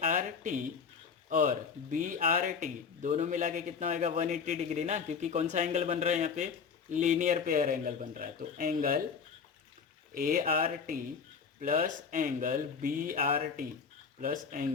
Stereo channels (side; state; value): right; quieter; 6.1 dB